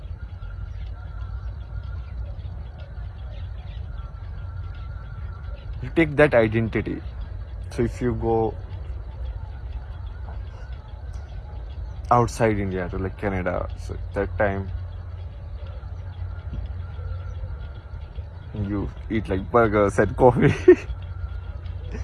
you take that identity. So if you go outside India to Canada, so that time you eat burgers and coffee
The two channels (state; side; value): identical; both; correlation 1.00